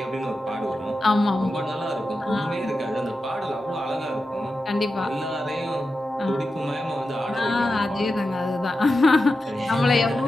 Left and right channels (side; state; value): both; normal; correlation 0.90